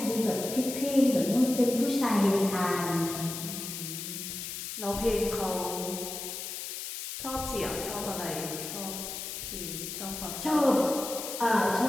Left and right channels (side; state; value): left; noise; hiss, 7 dB below the sound